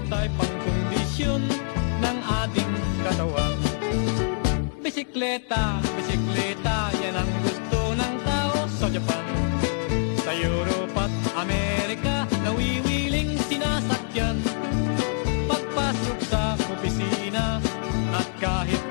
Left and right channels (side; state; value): right; silent; digital silence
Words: ay pangkondisyon ng ating katawan. Bisikleta, bisikleta, yan ang gusto ng tao sa Japan. Sa Europe at Amerika, nawiwiling sinasakyan. Pagpasok sa opisina at kahit